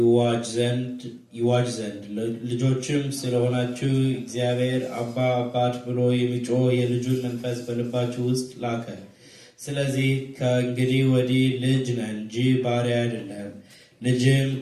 ዘንድ። ልጆችም ስለሆናችሁ እግዚአብሔር አባ አባት ብሎ የሚጮህ የልጁን መንፈስ በልባችሁ ውስጥ ላከ። ስለዚህ ከእንግዲህ ወዲህ ልጅ ነን እንጂ ባሪያ አይደለም። ልጅም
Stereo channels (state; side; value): identical; both; correlation 1.00